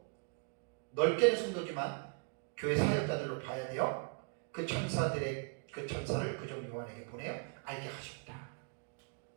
넓게는 성도지만 교회 사역자들로 봐야 돼요. 그 천사를 그 종 요한에게 보내어 알게 하셨다.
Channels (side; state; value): left; quieter; 38.7 dB